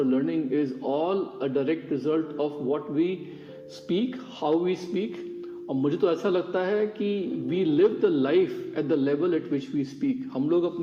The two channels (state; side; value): identical; both; correlation 1.00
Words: learning is all a direct result of what we speak, how we speak. और मुझे तो ऐसा लगता है कि we live the life at the level at which we speak. हम लोग